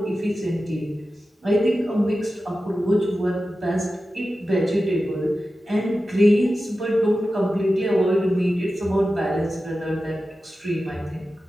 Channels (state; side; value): normal; both; correlation 0.93